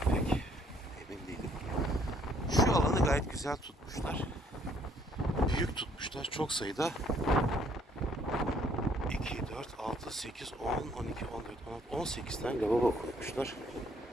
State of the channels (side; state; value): both; normal; correlation 0.64